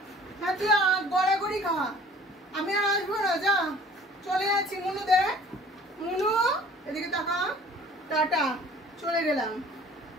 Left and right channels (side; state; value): both; normal; correlation 0.51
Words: হ্যাঁ তুই গড়াগড়ি খা, আমি আর আসবো না। যা চলে যাচ্ছি। মনু দেখ, মনু এদিকে তাকা। টাটা, চলে গেলাম।